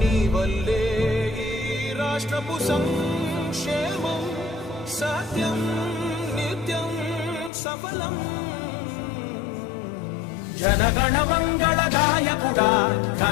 వల్లే ఈ రాష్ట్రపు సంక్షేమం సత్యం నిత్యం సఫలం. జనగణ మంగళ గాయకుడా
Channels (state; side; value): drops out; right; at 7.5 s